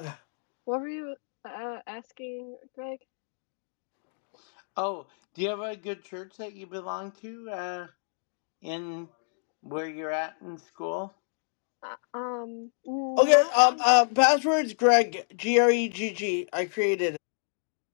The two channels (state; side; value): silent; right; digital silence